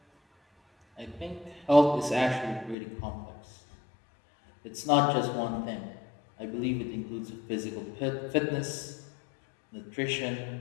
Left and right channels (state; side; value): drops out; right; at 2.8 s